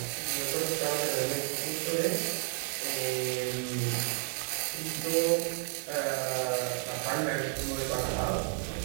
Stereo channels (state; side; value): quieter; left; 37.6 dB